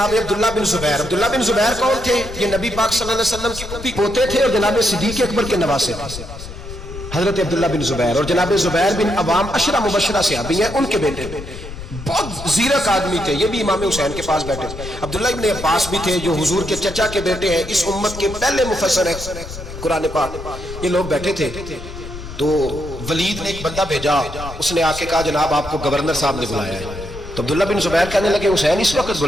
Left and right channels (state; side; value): noise; left; rumble, 11 dB below the sound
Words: عبداللہ بن زبیر، عبداللہ بن زبیر کون تھے؟ یہ نبی پاک صلی اللہ علیہ وسلم کے پوتے تھے اور جناب صدیق اکبر کے نواسے تھے. حضرت عبداللہ بن زبیر اور جناب زبیر بن عوام 10 مبشرہ صحابی ہیں، ان کے بیٹے بہت زیرک آدمی تھے. یہ بھی امام حسین کے پاس بیٹھے تھے. عبداللہ ابن عباس بھی تھے جو حضور کے چچا کے بیٹے ہیں، اس امت کے پہلے مفسر ہیں قرآن پاک. یہ لوگ بیٹھے تھے. تو ولید نے ایک بندہ بھیجا، اس نے آ کے کہا جناب آپ کو گورنر صاحب نے بلایا ہے. تو عبداللہ بن زبیر کہنے لگے حسین اس وقت